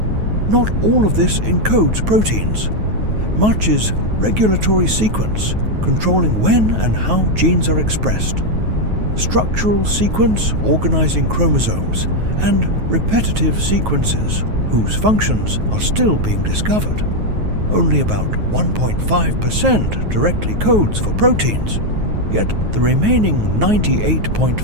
Not all of this encodes proteins. Much is regulatory sequence, controlling when and how genes are expressed, structural sequence organizing chromosomes, and repetitive sequences whose functions are still being discovered. Only about 1.5% directly codes for proteins, yet the remaining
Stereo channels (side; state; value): left; late; 9.3 ms